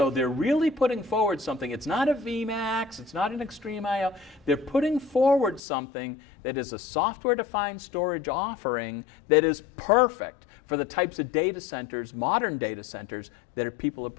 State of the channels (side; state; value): right; drops out; at 5.6 s